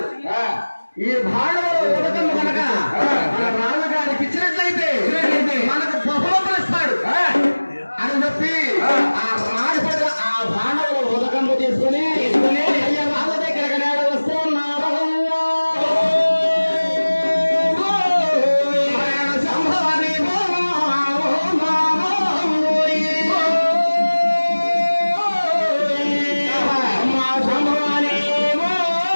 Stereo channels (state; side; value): inverted; both; correlation -1.00